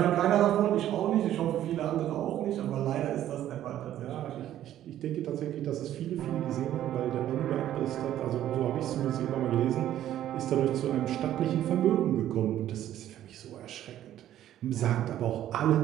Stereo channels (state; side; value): quieter; left; 12.2 dB